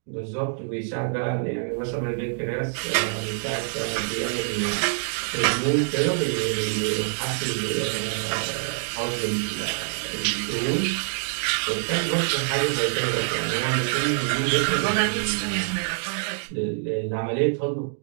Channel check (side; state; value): left; silent; digital silence